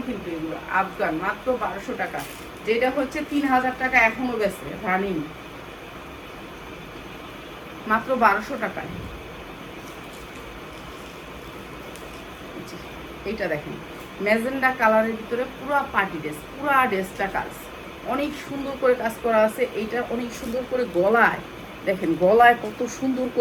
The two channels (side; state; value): both; identical; correlation 1.00